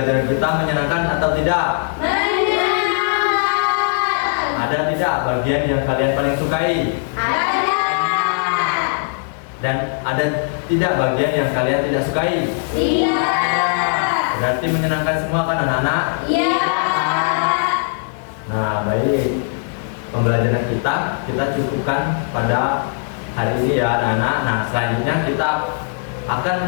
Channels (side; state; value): right; silent; 63 dB below the other